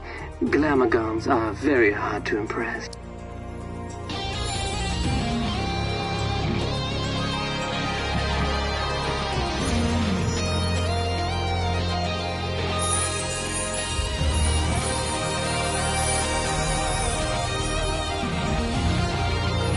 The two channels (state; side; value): identical; both; correlation 1.00